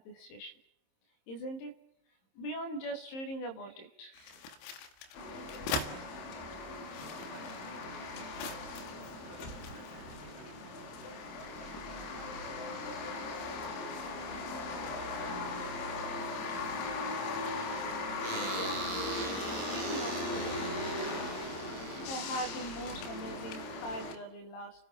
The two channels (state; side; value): late; right; 26 ms